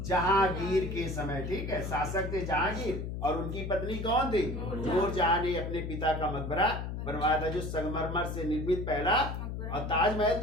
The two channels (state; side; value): noise; left; hum, 5 dB below the sound